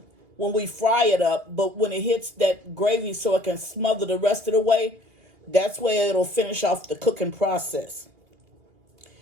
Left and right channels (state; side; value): late; left; 2.3 ms